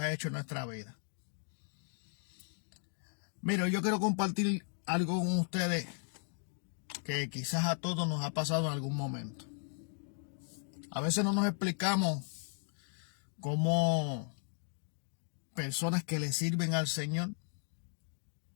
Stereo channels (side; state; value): right; silent; 54 dB below the other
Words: ha hecho en nuestra vida. Mira, yo quiero compartir algo con ustedes que quizás a todos nos ha pasado en algún momento. A veces no nos explicamos cómo personas que le sirven al Señor